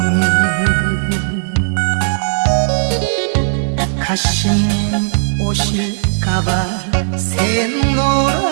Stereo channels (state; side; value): silent; left; digital silence